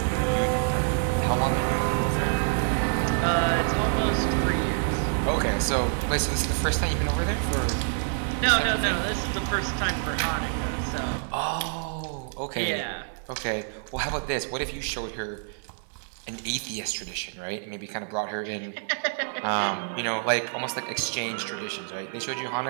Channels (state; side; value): silent; left; digital silence